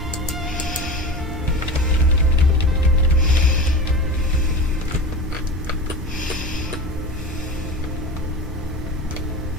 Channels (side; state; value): both; normal; correlation 0.30